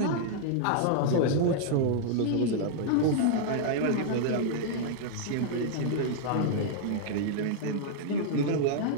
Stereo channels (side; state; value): both; different; correlation -0.01